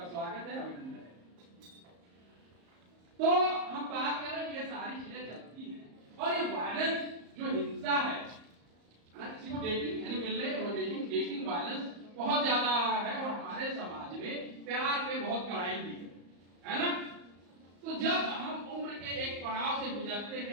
स्वागत है, अभिनंदन है। तो हम बात कर रहे हैं, ये सारी चीजें चलती हैं, और ये वायलेंस जो हिंसा है ना, किसी को डेटिंग यानी मिलने और डेटिंग वायलेंस बहुत ज्यादा है, और हमारे समाज में प्यार पे बहुत कड़ाई भी है ना। तो जब हम उम्र के एक पड़ाव से गुजरते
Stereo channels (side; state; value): left; late; 34 ms